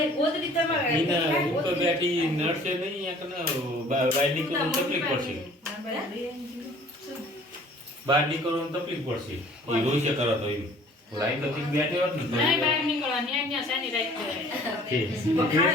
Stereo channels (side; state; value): both; normal; correlation 0.52